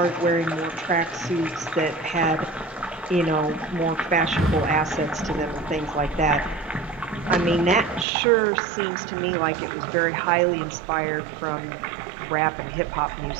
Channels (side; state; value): left; drops out; at 8.1 s